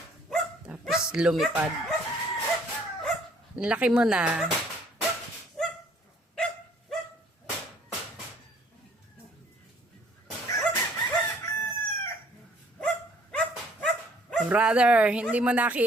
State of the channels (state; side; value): normal; both; correlation 0.60